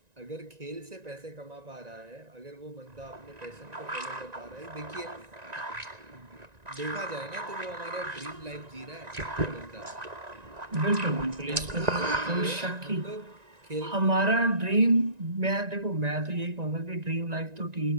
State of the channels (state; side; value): late; left; 1.9 ms